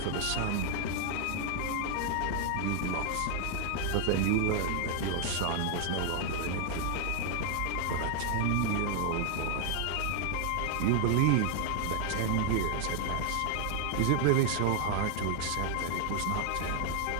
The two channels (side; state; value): both; different; correlation 0.00